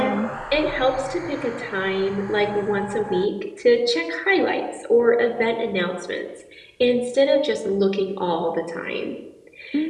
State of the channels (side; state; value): both; identical; correlation 1.00